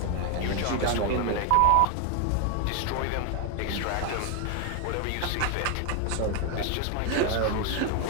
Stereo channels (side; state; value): both; different; correlation 0.01